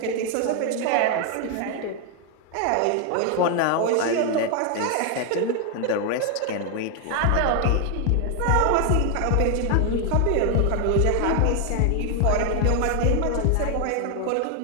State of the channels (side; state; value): both; different; correlation 0.00